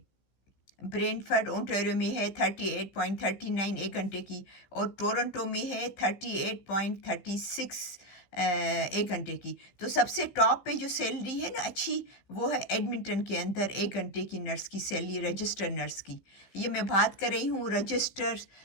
میں ہے 38.39 1 گھنٹے کی، اور ٹورنٹو میں ہے 38.36 1 گھنٹے کی۔ تو سب سے ٹاپ پہ جو سیلری ہے نا اچھی، وہ ہے ایڈمنٹن کے اندر 1 گھنٹے کی نرس کی سیلری، رجسٹرڈ نرس کی۔ یہ میں بات کر رہی ہوں رجسٹرڈ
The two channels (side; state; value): right; late; 16 ms